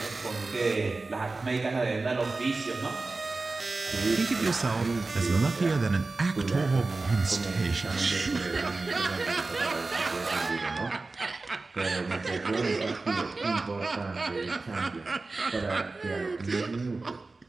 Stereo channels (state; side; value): quieter; left; 3.5 dB